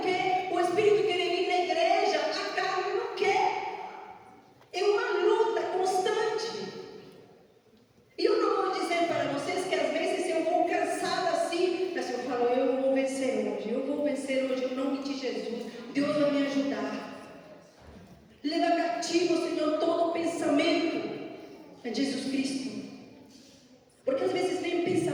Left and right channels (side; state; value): both; identical; correlation 1.00